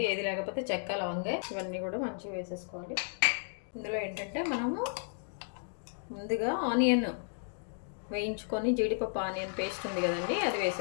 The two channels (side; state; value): right; silent; digital silence